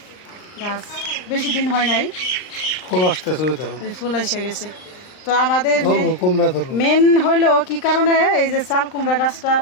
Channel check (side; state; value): right; late; 39 ms